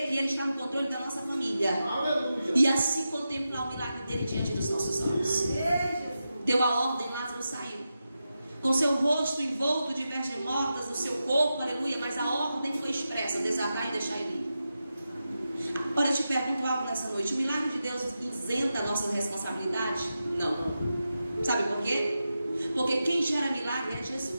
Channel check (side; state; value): both; inverted; correlation -0.90